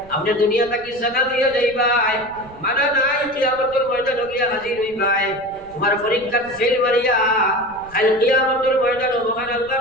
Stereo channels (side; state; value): right; noise; rumble, 22 dB below the sound